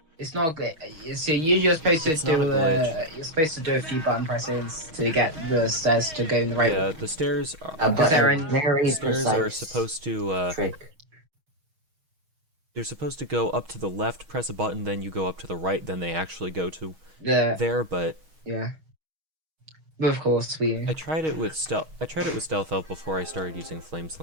It's not a glitch. So you're supposed to It's do not a glitch. you're supposed to do a few button presses to get the stairs to go in the right Yeah, the stairs are, But there a any- very stairs are precise supposed to trick. they're supposed to go up to the left, press a button, then you go up to the right, then they actually go to the there, but yeah. But of course we I tried it with Stealth Elf before I started using Flame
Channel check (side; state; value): left; late; 6.3 ms